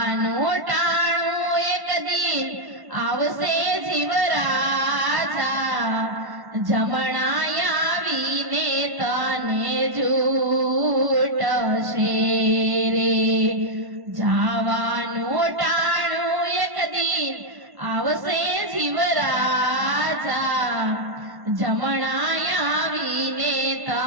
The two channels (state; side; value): late; left; 1.1 ms